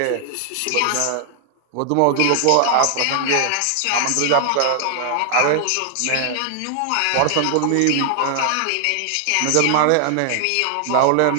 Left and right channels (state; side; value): different; both; correlation 0.00